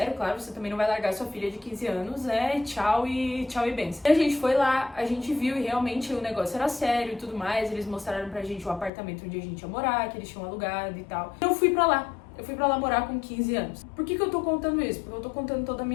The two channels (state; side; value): drops out; right; at 8.9 s